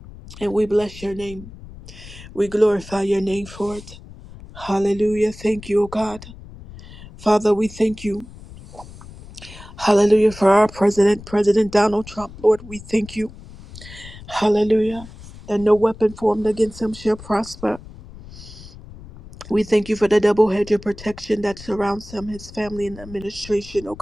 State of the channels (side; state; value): left; noise; rumble, 17 dB below the sound